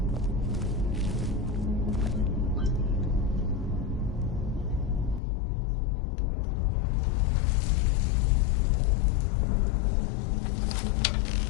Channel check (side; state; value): right; drops out; at 5.2 s